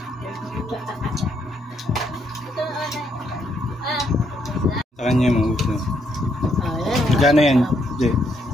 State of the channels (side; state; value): both; normal; correlation 0.74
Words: Sa kanya yung mga gusto. Ayan. Gano yan, Jay?